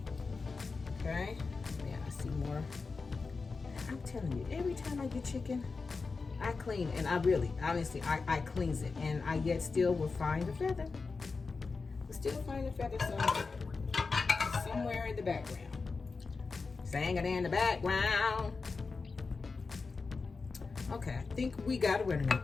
Okay. Yeah, I see more. I'm telling you, every time I get chicken, I clean, and honestly, I cleanse it, and I yet still will find the feather. Still find the feather somewhere in the background. Sang it in the background. Okay, I think we got it ready now.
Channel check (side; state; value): right; quieter; 4.4 dB